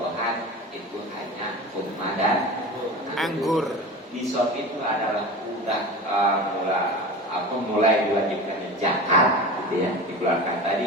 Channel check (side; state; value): both; normal; correlation 0.31